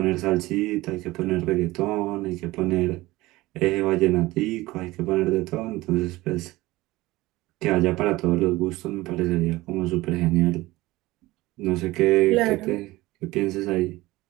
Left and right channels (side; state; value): left; quieter; 19.2 dB